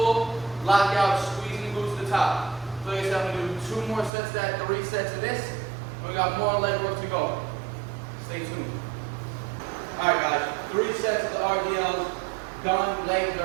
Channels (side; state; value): left; drops out; at 4.1 s